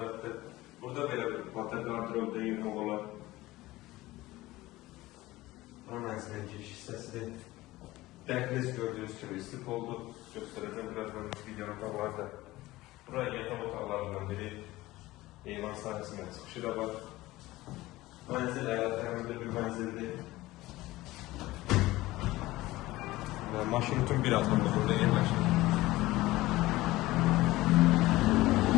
Burada belə bir batar qardırobda yığmaq olar. Bu mənzilin giriş hissəsidir. Dəhliz gördüyünüz kimi istif oldu. Göstərəcəm birazdan videonun qabaqlarda. Buraya yataq otaqlarından biri. Eyvan sahəsində çıxışı da var. Mənzil əyalətlərində bir mənzildir. Maşın bütün bir adımda burada yerləşir.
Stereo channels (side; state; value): right; quieter; 18.2 dB